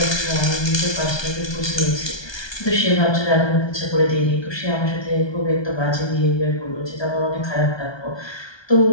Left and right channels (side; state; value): right; late; 1.2 ms